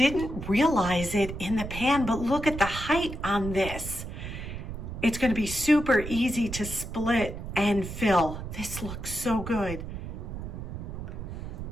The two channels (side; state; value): right; noise; rumble, 8 dB below the sound